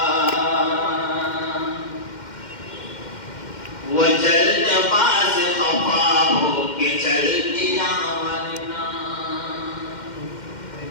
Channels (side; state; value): right; late; 2.1 ms